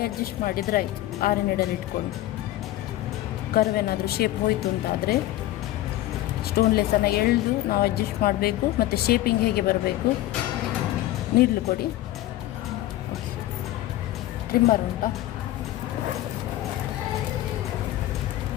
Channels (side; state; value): right; quieter; 15.4 dB